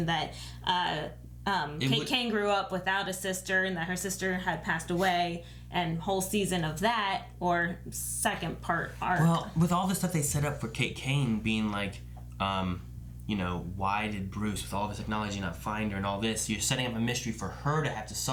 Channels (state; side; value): identical; both; correlation 1.00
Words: that Kate Kane grew up without a sister and that her sister had passed away, and whole season of that, or second part arc. Well, with all the stuff they set up for Kate Kane being like, why did Bruce, with all of his technology, not find her and all this? You're setting up a mystery for her to have to